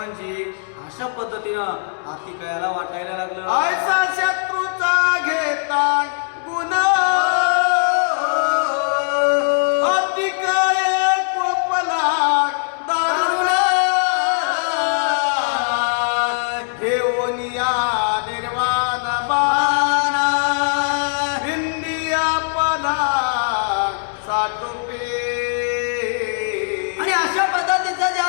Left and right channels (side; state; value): right; silent; digital silence